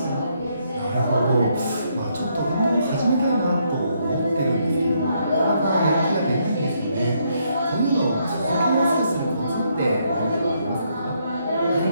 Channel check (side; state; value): both; inverted; correlation -0.74